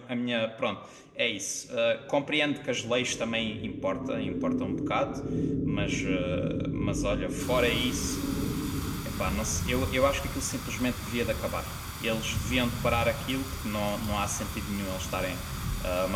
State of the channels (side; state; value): both; identical; correlation 1.00